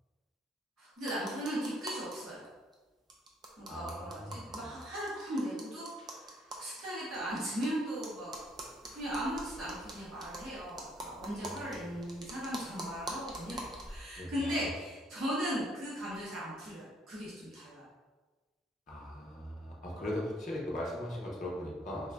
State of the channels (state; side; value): normal; both; correlation 0.66